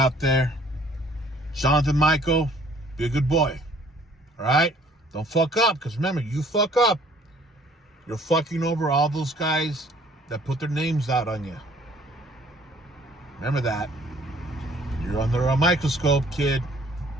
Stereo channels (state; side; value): normal; both; correlation 0.58